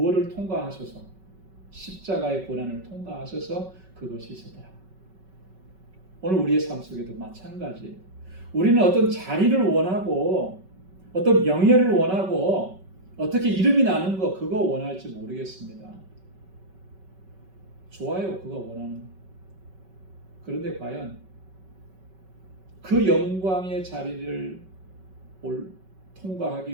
통과하셔서 십자가의 고난을 통과하셔서 그것이 있었다. 오늘 우리의 삶 속에도 마찬가지. 우리는 어떤 자리를 원하고 어떤 명예를 원하고 어떻게 이름이 나는 거 그거 원할지 모르겠습니다. 좋아요, 그거 원하는 거. 그런데 과연 그 영광의 자리를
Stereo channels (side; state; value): left; late; 5.3 ms